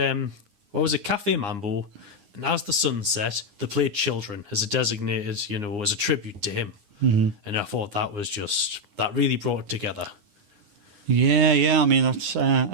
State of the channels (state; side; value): late; left; 9.8 ms